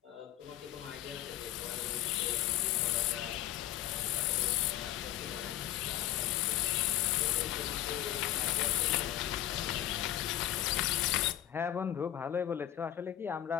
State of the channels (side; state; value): right; quieter; 12.6 dB